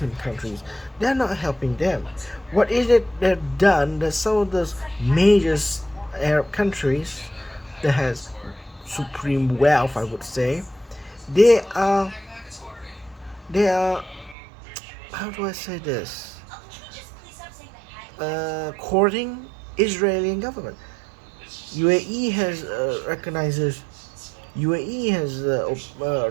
countries. They're not helping them. What is it they've done that some of those major Arab countries that has supreme wealth, I would say, they are they are how do I say this? Courting Israeli government. UAE has recognizes UAE has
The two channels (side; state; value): left; drops out; at 14.4 s